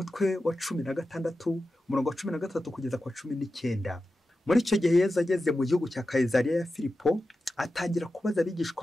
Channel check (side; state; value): both; normal; correlation 0.92